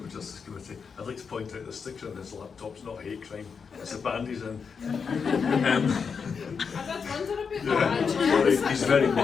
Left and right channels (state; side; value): quieter; right; 5.9 dB